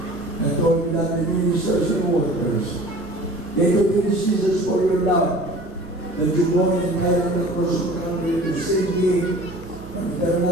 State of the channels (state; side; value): noise; right; rumble, 21 dB below the sound